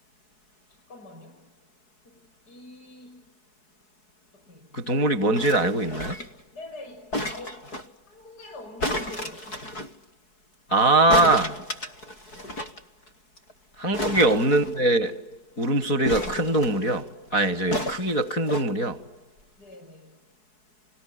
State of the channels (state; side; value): late; right; 4.7 ms